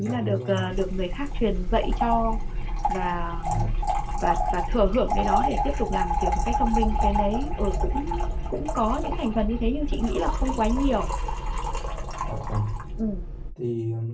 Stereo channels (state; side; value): identical; both; correlation 1.00